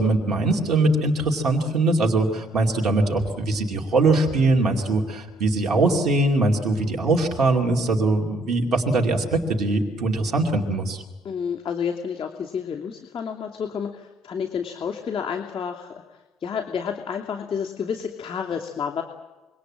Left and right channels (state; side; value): normal; both; correlation 0.66